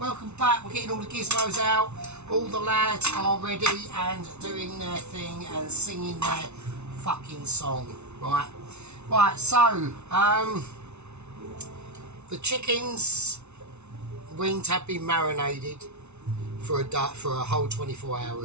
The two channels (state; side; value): late; left; 0.81 ms